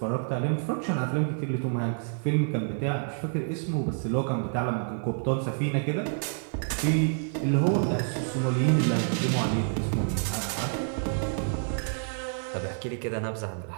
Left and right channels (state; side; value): silent; left; digital silence